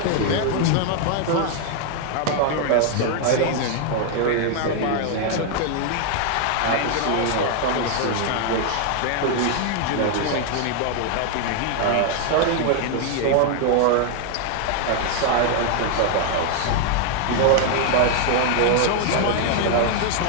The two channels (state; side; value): different; both; correlation 0.00